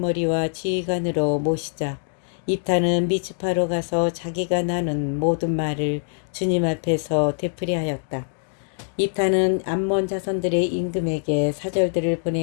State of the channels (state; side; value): silent; right; digital silence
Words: 지휘관으로 모시자 입타는 미츠파로 가서 자기가 나눈 모든 말을 주님 앞에서 되풀이하였다. 입타는 암몬 자손들의 임금에게 사절들을